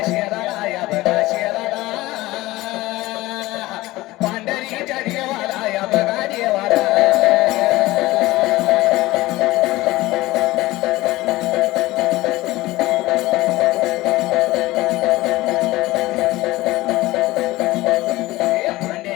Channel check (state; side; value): quieter; right; 18.7 dB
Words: शहराला या बघा